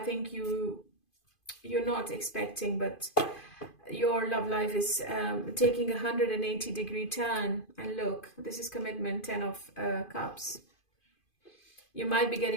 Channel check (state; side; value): late; right; 2.5 ms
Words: you're not expecting, but your love life is taking a 180-degree turn. And look, this is commitment, 10 of Cups. You might be